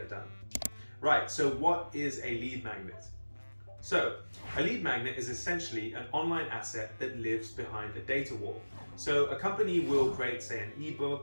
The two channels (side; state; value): both; inverted; correlation -1.00